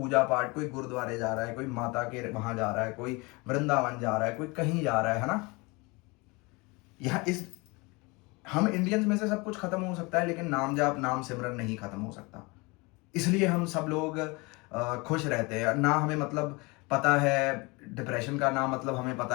पाठ, कोई गुरुद्वारे जा रहा है, कोई माता के वहां जा रहा है, कोई वृंदावन जा रहा है, कोई कहीं जा रहा है ना। यहाँ हम इंडियंस में से सब कुछ खत्म हो सकता है, लेकिन नाम जाप, नाम सिमरन नहीं खत्म हो सकता। इसलिए हम सब लोग खुश रहते हैं ना। हमें मतलब पता है डिप्रेशन का, ना मतलब हमें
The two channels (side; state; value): right; quieter; 26.3 dB